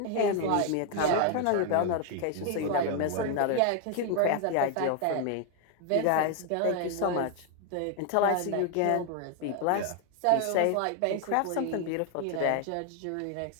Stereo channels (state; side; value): different; both; correlation 0.01